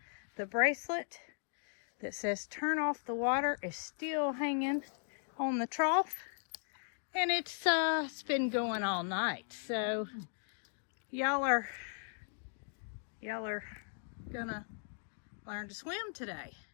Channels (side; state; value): right; silent; digital silence